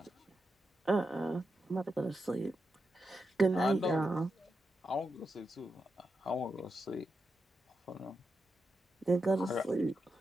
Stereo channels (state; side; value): normal; both; correlation 0.87